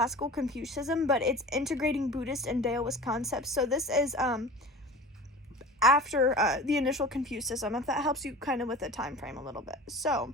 Confucianism, but it's integrating Buddhist and Taoist concepts. So this is after the initial Confucianism, if that helps you kind of with the time frame a little bit. So,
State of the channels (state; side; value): normal; both; correlation 0.37